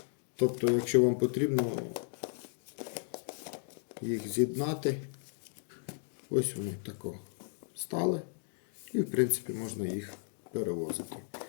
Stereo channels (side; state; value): right; silent; digital silence